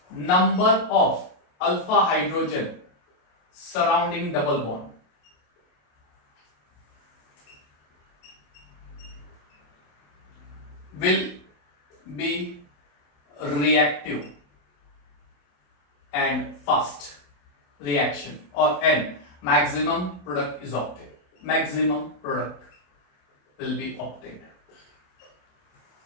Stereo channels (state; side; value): late; right; 28 ms